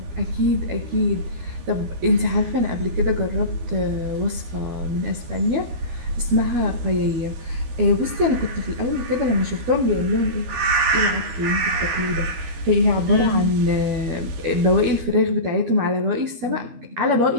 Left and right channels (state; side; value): late; left; 13 ms